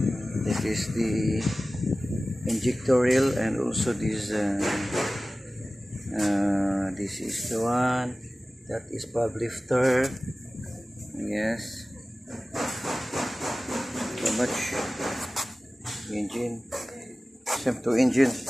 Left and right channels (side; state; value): both; normal; correlation 0.97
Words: This is the injector reel, and also this is the one that is pub lifter. Yes, so much engine, same to engine.